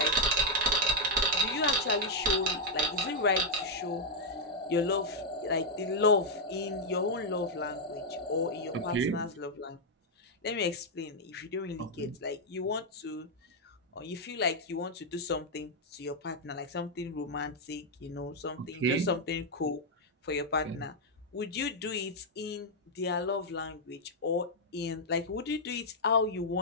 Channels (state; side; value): normal; both; correlation -0.04